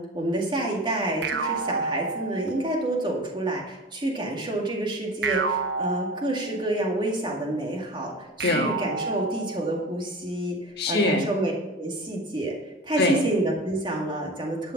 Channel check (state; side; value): normal; both; correlation 0.33